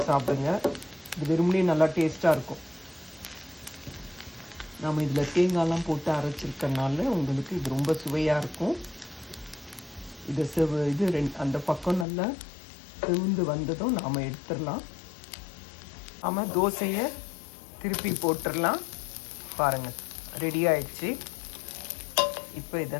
சாப்பிடுங்க. இது வெறுமனே நல்லா டேஸ்ட்டாக இருக்கும். நம்ம இதில் தேங்காய்லாம் போட்டு அரைச்சிருக்கனால உங்களுக்கு இது ரொம்ப சுவையாக இருக்கும். இது அந்த பக்கம் நல்லா செவந்து வந்ததும் நாம் எடுத்துடலாம். நாம் தோசையை திருப்பி போட்டுடலாம். பாருங்கள் ரெடி ஆயிடுச்சு. இப்போ இதை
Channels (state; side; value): drops out; right; at 12.1 s